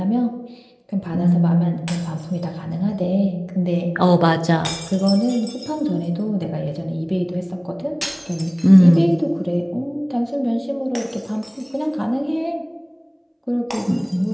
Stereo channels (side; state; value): both; identical; correlation 1.00